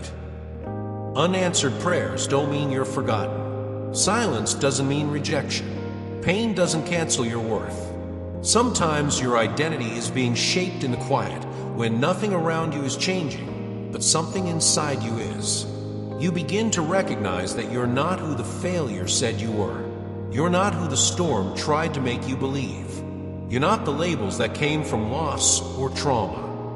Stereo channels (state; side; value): identical; both; correlation 1.00